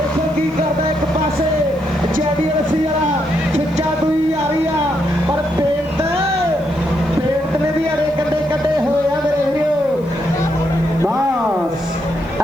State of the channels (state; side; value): noise; left; hiss, 30 dB below the sound